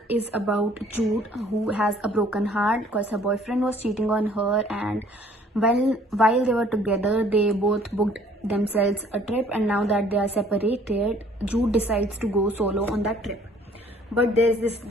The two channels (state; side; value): normal; both; correlation 0.57